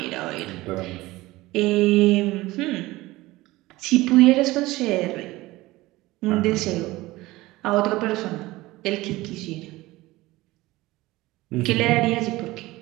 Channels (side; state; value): left; quieter; 19.0 dB